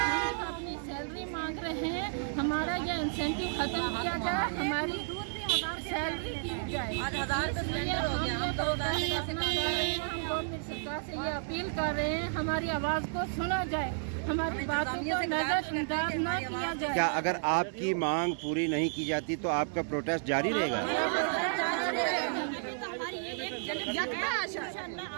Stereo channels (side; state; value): left; silent; digital silence